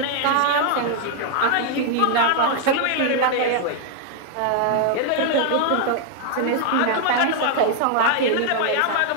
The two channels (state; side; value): different; both; correlation 0.00